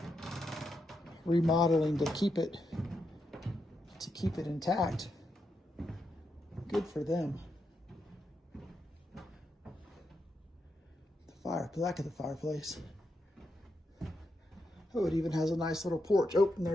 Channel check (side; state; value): both; normal; correlation 0.84